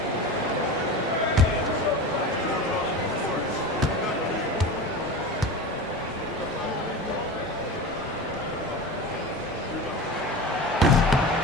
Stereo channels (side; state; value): both; normal; correlation 0.29